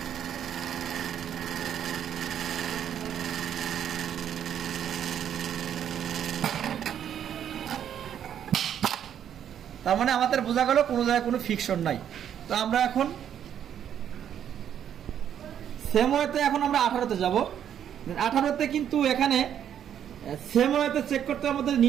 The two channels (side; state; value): left; quieter; 9.5 dB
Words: তার মানে আমাদের বোঝা গেল কোনো জায়গায় কোনো ফিকশন নাই। তো আমরা এখন সেম ওয়েতে এখন আমরা 18তে যাব। 18তে কিন্তু এখানে সেম ওয়েতে চেক করতে আমাদের